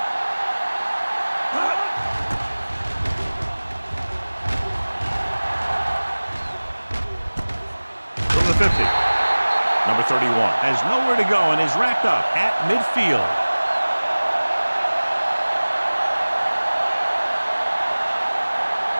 From the 50. Number 31 has nowhere to go and is wrapped up at midfield.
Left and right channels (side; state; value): both; inverted; correlation -1.00